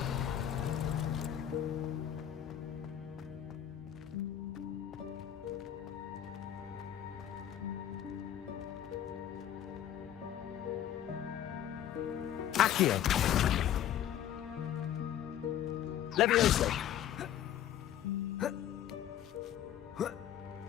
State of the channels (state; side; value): quieter; right; 10.8 dB